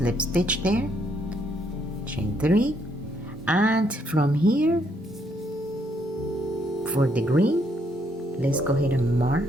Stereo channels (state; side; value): normal; both; correlation 0.72